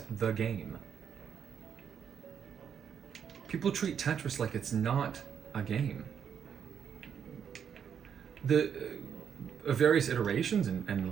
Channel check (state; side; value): quieter; left; 7.8 dB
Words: the game. People treat Tetris like it's not a game. The various iterations